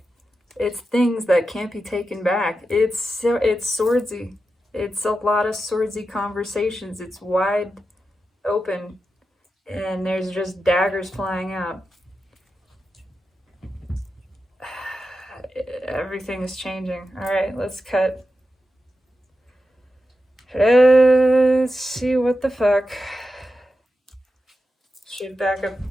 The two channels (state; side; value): normal; both; correlation 0.90